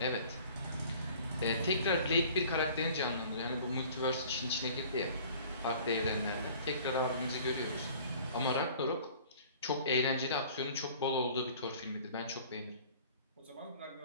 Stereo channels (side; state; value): both; inverted; correlation -0.48